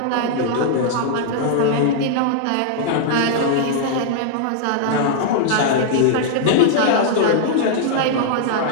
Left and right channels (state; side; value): different; both; correlation -0.01